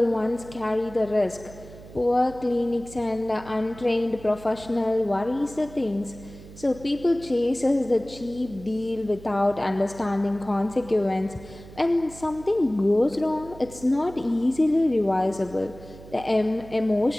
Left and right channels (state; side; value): noise; right; hum, 18 dB below the sound